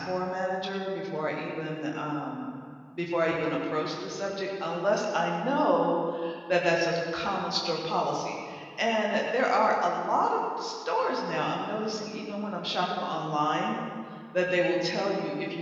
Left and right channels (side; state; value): both; identical; correlation 1.00